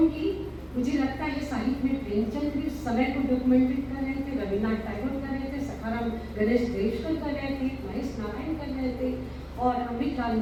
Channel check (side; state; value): both; identical; correlation 1.00